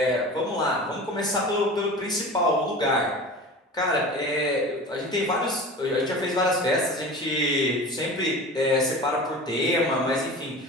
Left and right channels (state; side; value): normal; both; correlation 0.35